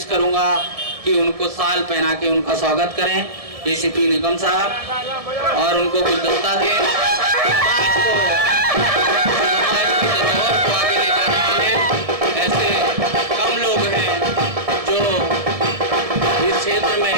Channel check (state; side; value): late; left; 1.7 ms